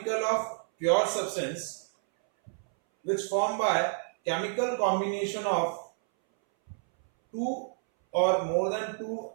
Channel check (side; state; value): left; silent; 59 dB below the other